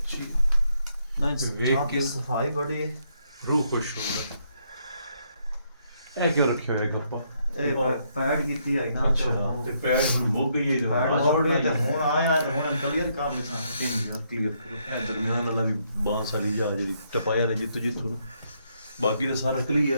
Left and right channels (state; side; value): inverted; both; correlation -0.74